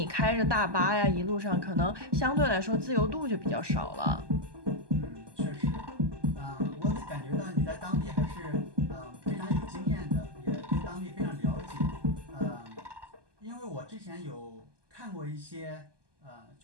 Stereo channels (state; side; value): late; left; 1.2 ms